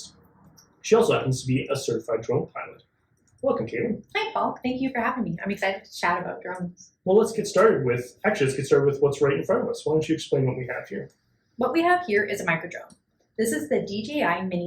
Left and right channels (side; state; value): both; identical; correlation 1.00